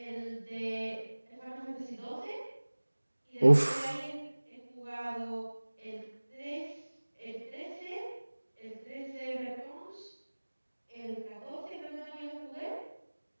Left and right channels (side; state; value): both; inverted; correlation -1.00